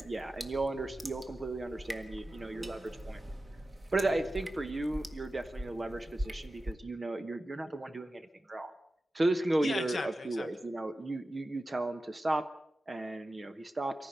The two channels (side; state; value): both; normal; correlation 0.94